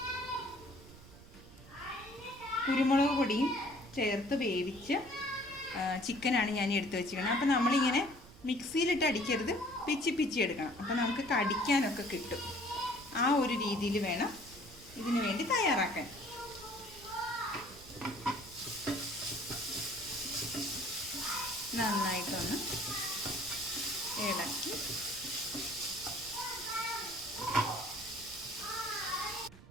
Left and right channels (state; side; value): noise; right; rumble, 20 dB below the sound